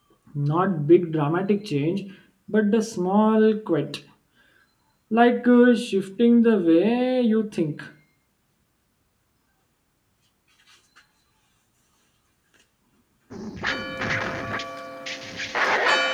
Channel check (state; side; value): identical; both; correlation 1.00